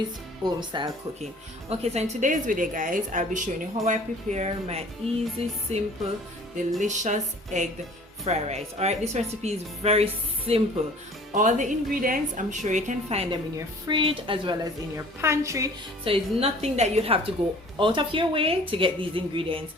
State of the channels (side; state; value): both; normal; correlation 0.49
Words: home style cooking. Okay, so in today's video guys, I'll be showing you how I prepare my easy, simple, delicious egg fried rice. All right, this recipe is very simple. All the ingredients, I'm sure you can find them in your fridge as well as in your pantry, so it's nothing that you'd have to go out of your way to get these ingredients